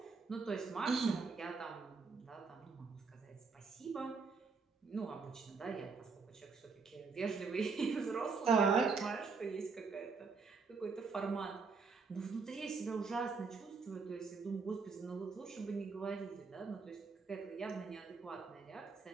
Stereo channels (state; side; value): quieter; left; 4.8 dB